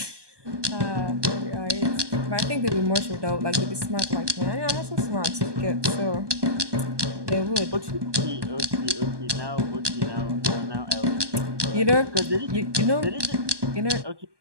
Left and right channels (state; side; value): late; left; 1.2 ms